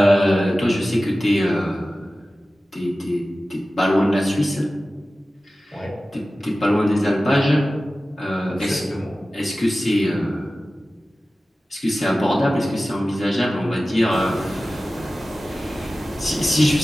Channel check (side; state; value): both; normal; correlation 0.96